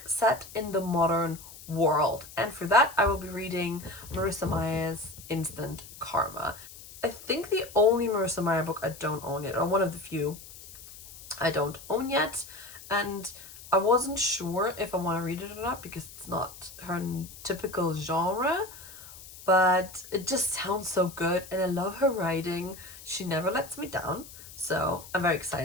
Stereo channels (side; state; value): left; noise; hiss, 17 dB below the sound